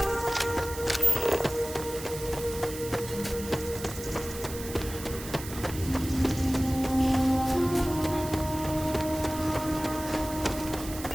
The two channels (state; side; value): noise; right; hiss, 11 dB below the sound